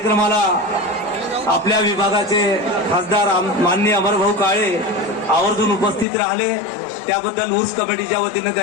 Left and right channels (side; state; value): right; drops out; at 6.1 s